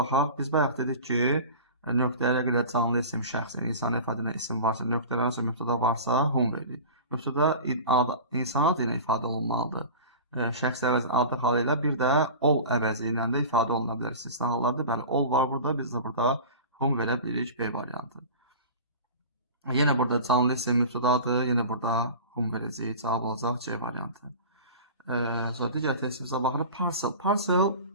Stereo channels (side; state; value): both; inverted; correlation -0.35